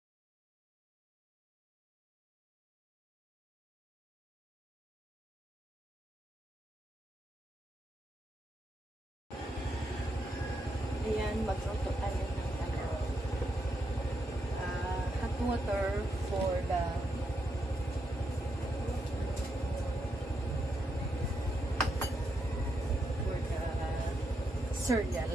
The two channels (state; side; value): normal; both; correlation 0.82